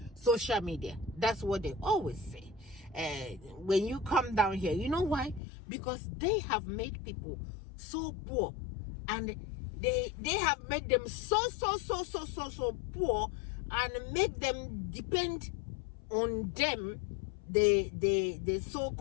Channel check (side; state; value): right; drops out; at 5.4 s